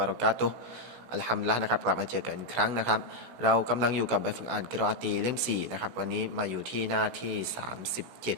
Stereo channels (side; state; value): left; late; 16 ms